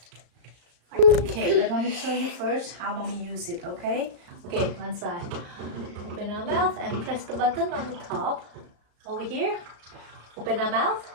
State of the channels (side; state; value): left; late; 35 ms